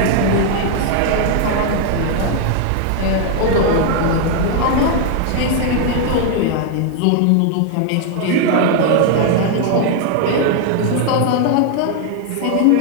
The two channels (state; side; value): different; both; correlation 0.00